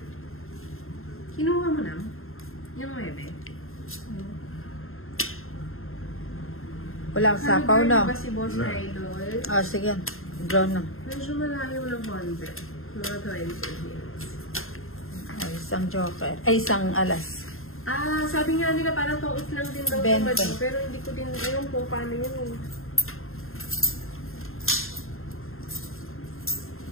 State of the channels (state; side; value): late; right; 0.61 ms